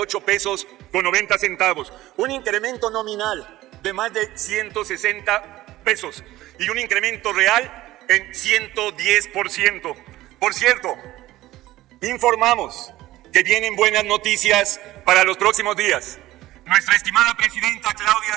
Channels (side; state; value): left; quieter; 16.3 dB